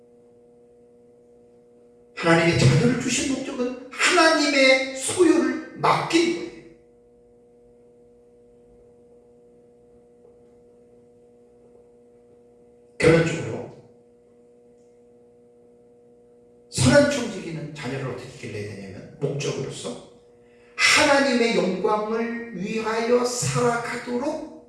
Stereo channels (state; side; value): identical; both; correlation 1.00